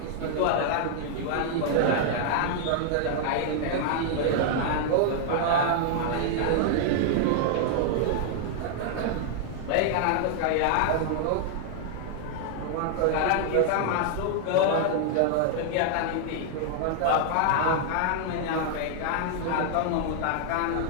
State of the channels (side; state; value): both; different; correlation -0.01